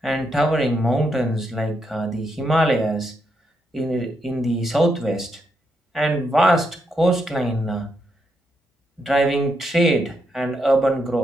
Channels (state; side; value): normal; both; correlation 0.80